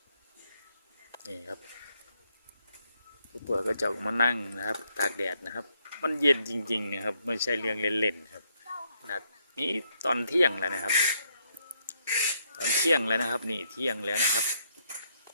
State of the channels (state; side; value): inverted; both; correlation -0.74